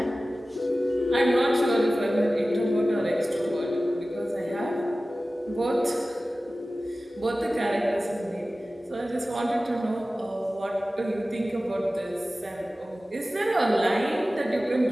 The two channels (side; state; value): both; normal; correlation 0.96